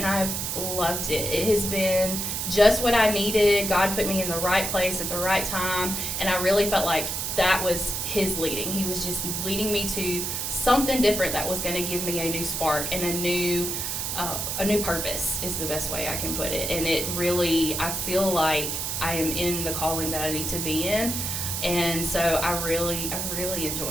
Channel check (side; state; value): right; noise; hiss, 2 dB below the sound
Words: I've loved it. It has been just what I needed. God put me in the right place at the right time, and I really felt like that was His leading. He was just leading me to something different that was going to give me a new spark and a new purpose is the best way I can put it. And it really, I feel like I am in the calling that I need to be in. And so I really